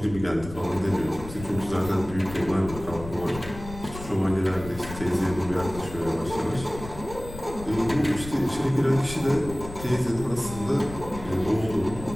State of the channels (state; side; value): noise; left; rumble, 12 dB below the sound